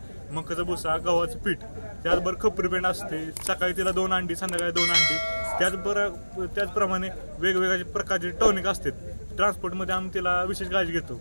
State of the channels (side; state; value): both; inverted; correlation -1.00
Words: मकाचा भुसा, गव्हाचं पीठ, त्याचबरोबर खपरी पेंड असते। सकाळी तिला 2 अंडी, संध्याकाळी 2 अंडी, त्याचप्रमाणे वेगवेगळ्या प्रकारचे टॉनिक असतात। ट्रान्सपोर्टमध्ये आम्ही तिला विशेष काळजी घेतो।